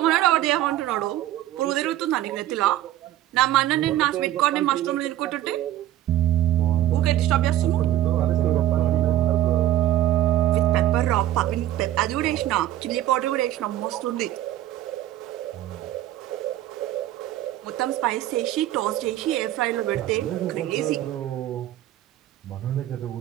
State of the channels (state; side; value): quieter; left; 13.3 dB